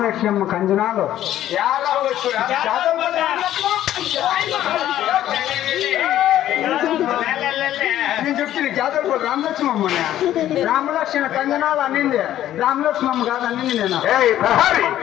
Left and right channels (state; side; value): quieter; right; 12.5 dB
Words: కంజనాలు నేను చెప్తుంది జాతర రామలక్ష్మమ్మని. రామలక్ష్మణ కంజనాలు అన్నింది, రామలక్ష్మమ్మ కాదు అన్నింది. నేను